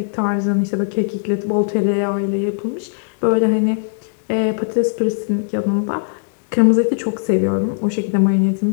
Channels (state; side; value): silent; right; digital silence